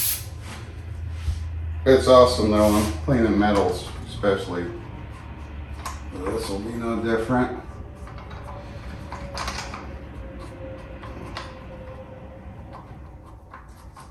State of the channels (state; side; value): identical; both; correlation 1.00